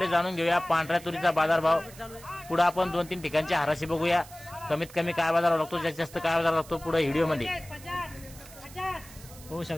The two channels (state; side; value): noise; right; hiss, 19 dB below the sound